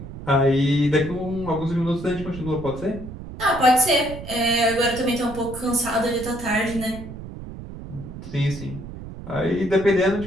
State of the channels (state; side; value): noise; right; rumble, 11 dB below the sound